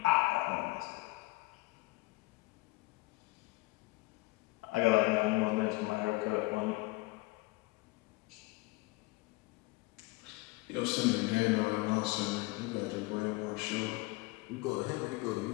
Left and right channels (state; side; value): quieter; right; 22.8 dB